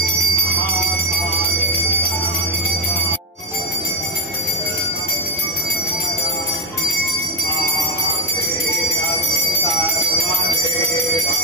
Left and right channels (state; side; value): normal; both; correlation 0.12